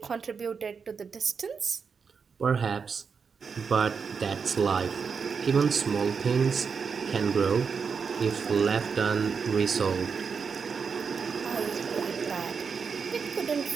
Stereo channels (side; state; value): left; quieter; 5.8 dB